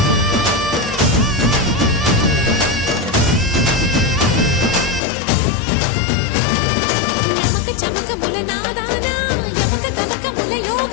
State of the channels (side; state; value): right; drops out; at 5.0 s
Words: నమక చమకముల నాదాన యమక గమకముల